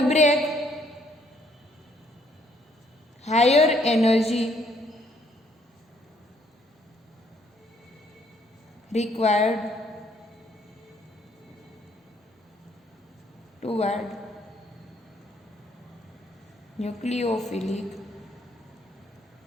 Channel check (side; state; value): both; normal; correlation 0.67